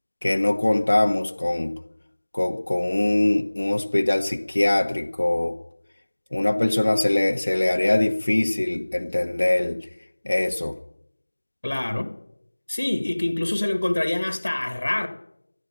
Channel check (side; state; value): both; inverted; correlation -1.00